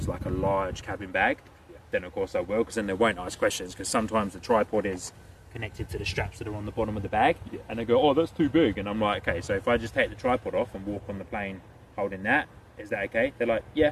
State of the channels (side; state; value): both; identical; correlation 1.00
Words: like a large cabin bag, then of course I will, because then they won't ask questions, because sometimes the tripod is connected to the straps that are on the bottom of the bag, and they go, oh, that's too big, and I'm like, okay, so if I just take the tripod off and walk on the plane holding that, is that okay? They're like,